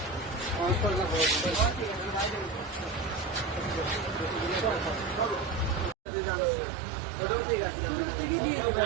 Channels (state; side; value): drops out; left; at 6.0 s